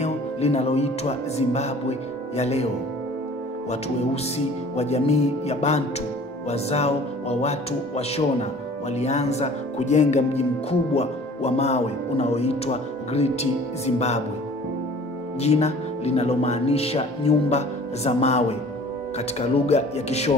linaloitwa Zimbabwe ya leo. Watu weusi wa jamii ya Bantu, wazao wa watu wa Shona, walianza kujenga mji mkubwa wa mawe unaoitwa Great Zimbabwe, jina linalomaanisha nyumba za mawe katika lugha ya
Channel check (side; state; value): both; normal; correlation 0.48